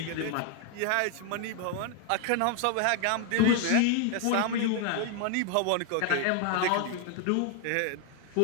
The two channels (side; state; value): both; different; correlation 0.00